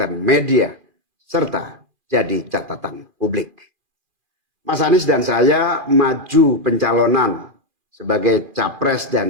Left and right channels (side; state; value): left; late; 2.4 ms